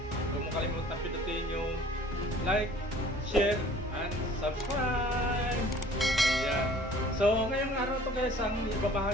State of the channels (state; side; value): normal; both; correlation 0.51